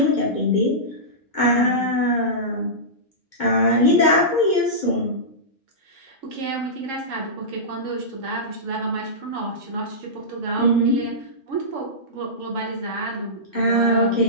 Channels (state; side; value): normal; both; correlation -0.16